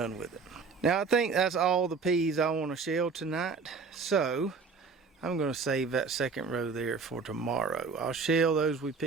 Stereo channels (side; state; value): left; quieter; 4.9 dB